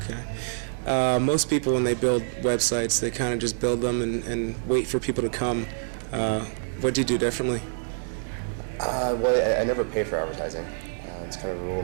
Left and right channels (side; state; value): left; silent; 61 dB below the other